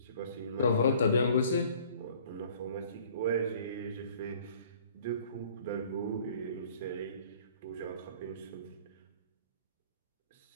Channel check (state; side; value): inverted; both; correlation -0.53